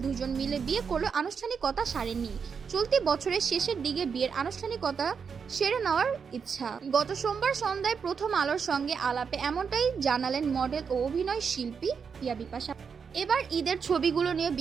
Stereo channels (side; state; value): left; quieter; 6.2 dB